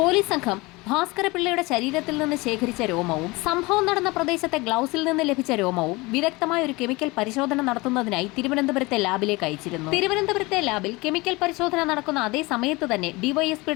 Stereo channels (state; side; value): quieter; right; 23.4 dB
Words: സംഘം ഭാസ്കരപിള്ളയുടെ ശരീരത്തിൽ നിന്ന് ശേഖരിച്ച രോമവും സംഭവം നടന്ന പ്രദേശത്തെ ഗ്ലൗസിൽ നിന്ന് ലഭിച്ച രോമവും വിദഗ്ധമായ ഒരു കെമിക്കൽ പരിശോധന നടത്തുന്നതിനായി തിരുവനന്തപുരത്തെ ലാബിലേക്ക് അയച്ചിരുന്നു. തിരുവനന്തപുരത്തെ ലാബിൽ കെമിക്കൽ പരിശോധന നടക്കുന്ന അതേ സമയത്ത് തന്നെ